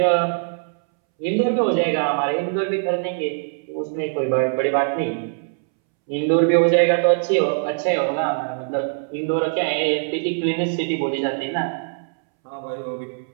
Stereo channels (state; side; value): silent; left; 64 dB below the other